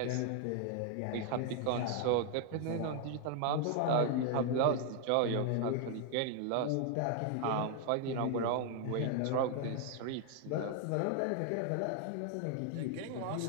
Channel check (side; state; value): both; different; correlation 0.00